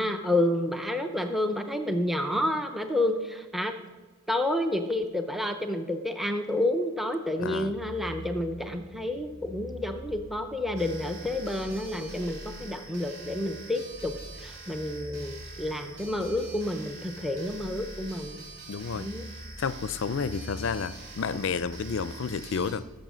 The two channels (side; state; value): both; normal; correlation 0.64